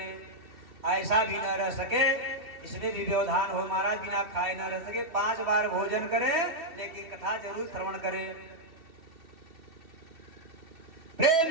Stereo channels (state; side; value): late; left; 3.2 ms